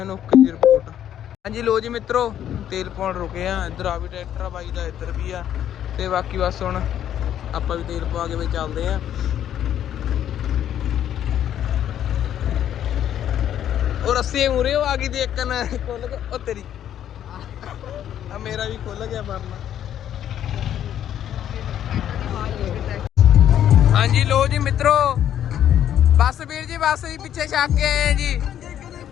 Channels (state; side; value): quieter; right; 10.5 dB